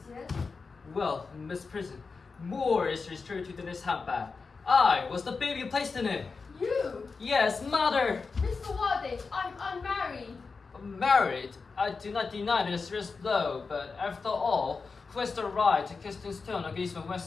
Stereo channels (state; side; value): quieter; right; 4.6 dB